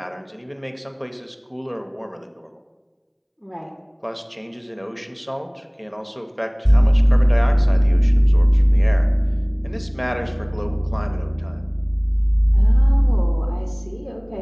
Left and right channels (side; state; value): both; identical; correlation 1.00